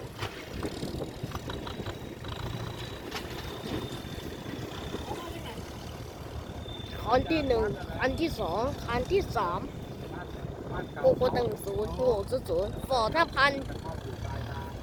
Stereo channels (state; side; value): identical; both; correlation 1.00